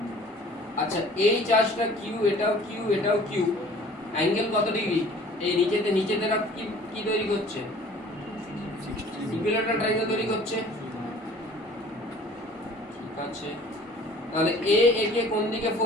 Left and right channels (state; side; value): normal; both; correlation 0.50